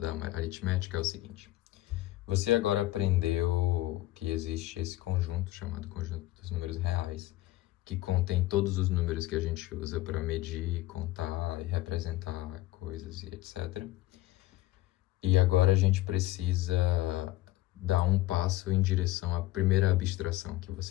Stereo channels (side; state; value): right; quieter; 16.6 dB